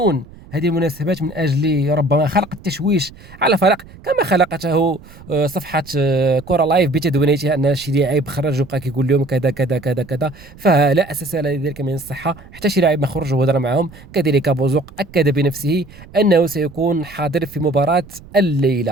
هذه المناسبات من أجل ربما خلق التشويش على فريق كما خلقته صفحة كرة لايف بتدويناتها أن شي لاعب خرج وبقى كيقول لهم كذا كذا كذا كذا، فلا أساس لذلك من الصحة. حتى شي لاعب ما خرج وهضر معهم. كذلك بوزوق أكد بنفسه أنه سيكون حاضر في مباراة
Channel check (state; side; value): noise; right; rumble, 20 dB below the sound